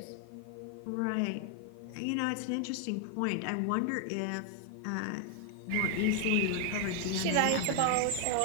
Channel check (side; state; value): both; different; correlation 0.00